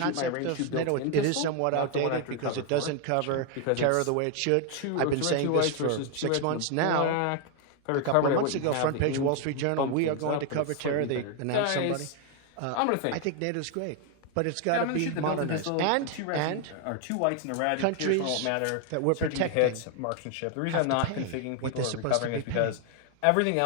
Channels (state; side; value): different; both; correlation 0.01